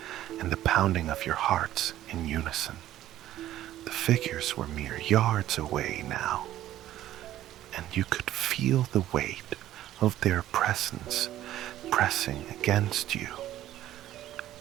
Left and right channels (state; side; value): quieter; left; 13.3 dB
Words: and the pounding of your hearts in unison. The figures were mere yards away now, and you could feel the weight of their presence pressing against you,